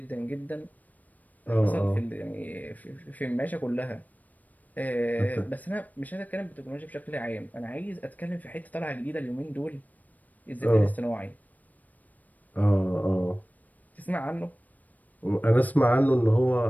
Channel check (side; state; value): right; late; 0.079 ms